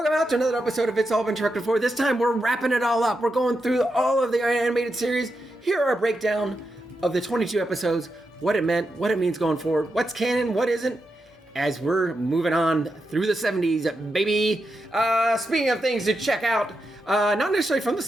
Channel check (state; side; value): normal; both; correlation 0.86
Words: to another episode of It's All Been Trucked Before. This time we're wrapping it all up. We're going through all of the animated series. Here are a breakdown of the 22 episodes, what it meant, what it means going forward, what's canon, what isn't, as we're moving on through the 70s, baby. Speaking of things to check out, not necessarily from the